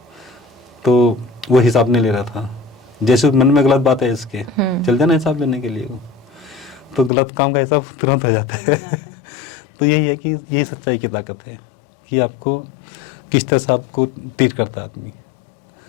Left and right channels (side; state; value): right; drops out; at 7.1 s